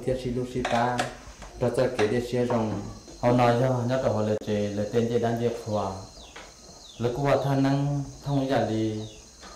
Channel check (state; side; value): identical; both; correlation 1.00